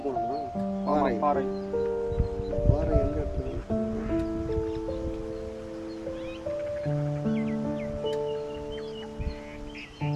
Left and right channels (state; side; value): identical; both; correlation 1.00